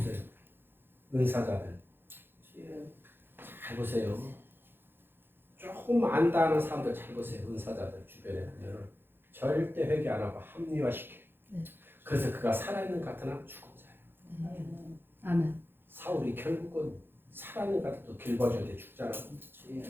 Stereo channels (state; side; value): late; left; 0.10 ms